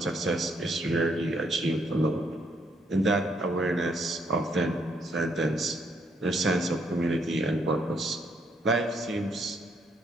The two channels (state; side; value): normal; both; correlation 0.72